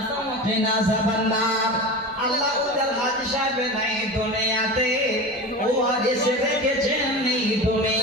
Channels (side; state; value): both; normal; correlation 0.29